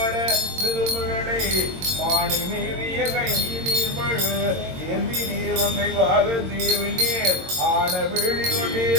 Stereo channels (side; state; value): left; late; 22 ms